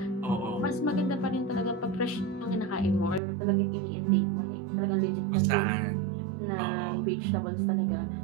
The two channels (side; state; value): left; drops out; at 3.2 s